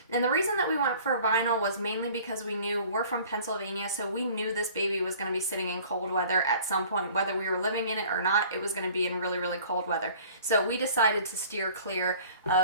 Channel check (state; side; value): inverted; both; correlation -0.49